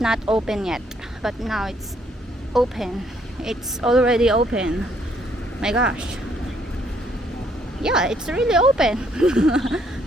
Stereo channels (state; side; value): normal; both; correlation 0.68